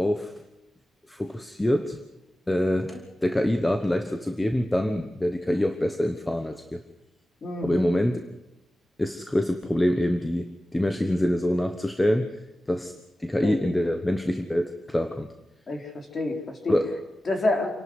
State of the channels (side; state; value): both; normal; correlation 0.95